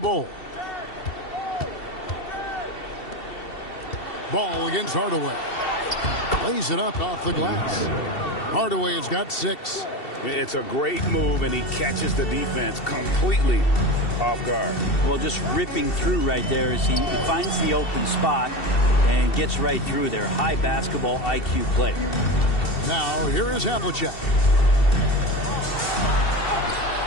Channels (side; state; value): right; late; 2.7 ms